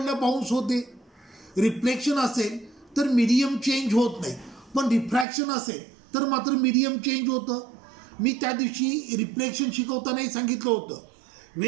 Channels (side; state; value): left; drops out; at 5.2 s